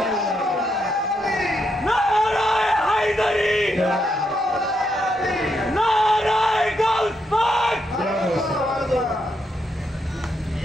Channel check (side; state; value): both; normal; correlation 0.80